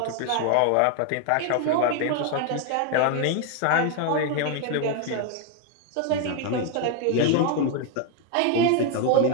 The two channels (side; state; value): both; different; correlation 0.01